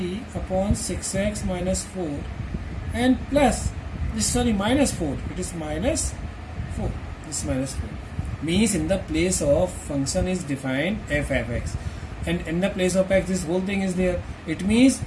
upon 6x minus 4, and plus this, sorry, minus 4, it is minus 4, this minus 4 means in the place of function is defined f of x, and in the place of x this whole thing is there. It means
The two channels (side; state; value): both; identical; correlation 1.00